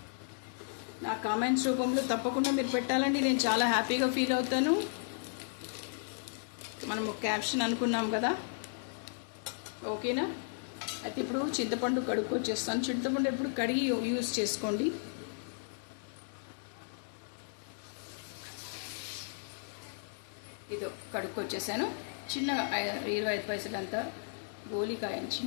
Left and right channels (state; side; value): silent; right; digital silence